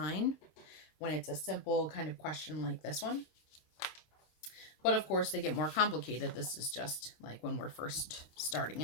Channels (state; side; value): late; right; 26 ms